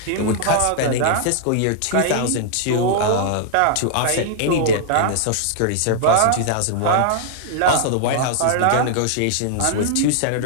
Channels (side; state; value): both; different; correlation -0.01